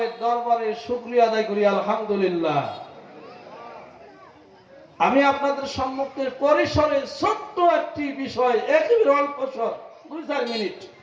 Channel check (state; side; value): identical; both; correlation 1.00